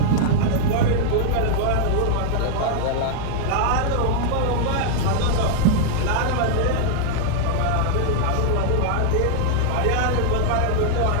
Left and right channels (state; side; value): different; both; correlation -0.01